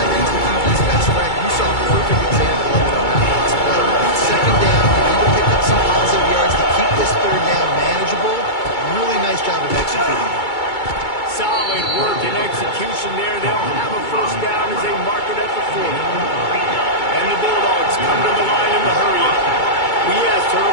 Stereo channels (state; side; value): late; right; 2.3 ms